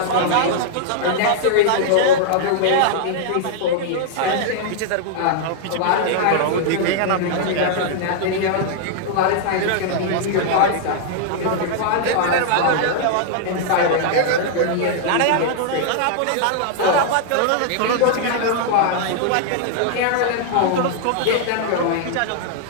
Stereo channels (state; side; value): different; both; correlation -0.01